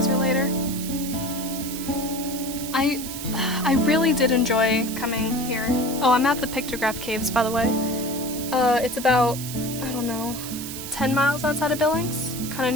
later. I really did enjoy coming here. Oh, I'm at the Pictograph Caves, by the way. It's about, I don't know, 10 miles outside of Billings, kind of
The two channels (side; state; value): right; noise; hiss, 9 dB below the sound